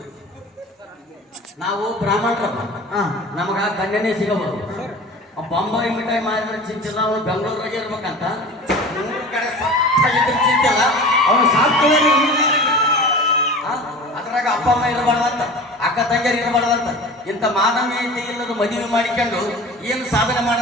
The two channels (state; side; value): normal; both; correlation 0.37